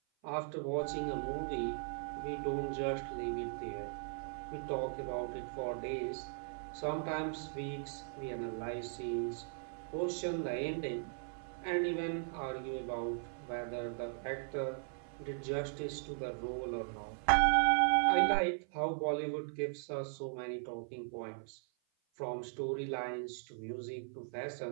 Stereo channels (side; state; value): left; silent; 52 dB below the other